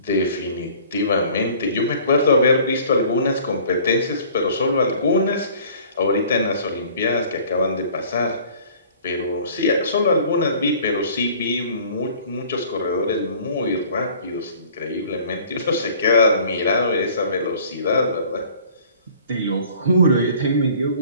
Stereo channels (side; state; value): both; inverted; correlation -0.51